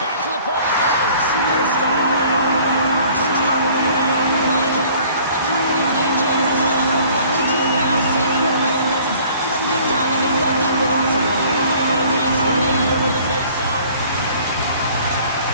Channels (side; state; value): both; inverted; correlation -0.53